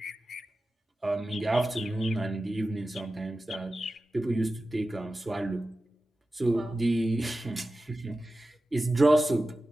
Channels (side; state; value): both; normal; correlation 0.94